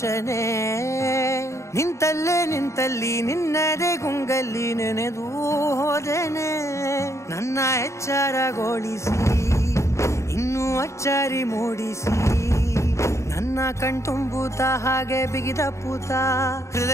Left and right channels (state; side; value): late; right; 0.14 ms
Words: ನಿಂತಲ್ಲಿ ನಿನ್ನದೇ ಗುಂಗಲ್ಲಿ ನೆನೆದು ಹೋದೆನೆ. ನನ್ನ ಎಚ್ಚರಗೊಳಿಸಿ ಇನ್ನೂ ಅಚ್ಚರಿ ಮೂಡಿಸಿ, ನನ್ನ ಕಣ್ತುಂಬುತ್ತ ಹಾಗೆ ಬಿಗಿದ ಪೂತ